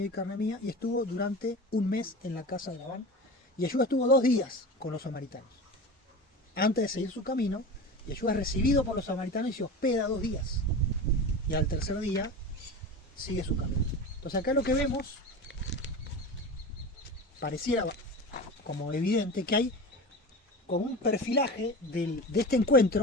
y carne mía, y estuvo durante un mes en la casa de Labán. Y Yeshua estuvo 2 días con los samaritanos. Antes de seguir su camino, Yeshua es recibido por los samaritanos y se hospeda 2 días. Y al tercer día sigue su camino. Entonces acá lo que vemos, pareciera como evidente que hay como un perfilaje de este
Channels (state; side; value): normal; both; correlation 0.30